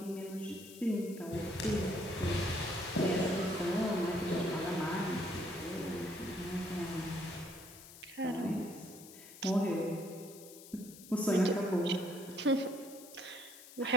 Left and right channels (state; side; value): noise; left; hiss, 17 dB below the sound